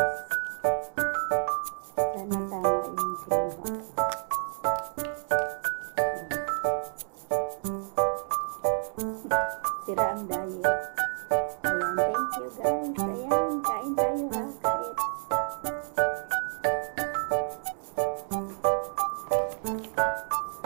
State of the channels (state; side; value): silent; left; digital silence